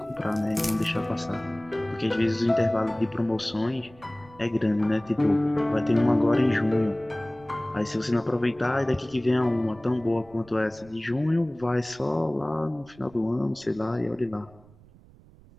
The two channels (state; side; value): noise; right; rumble, 25 dB below the sound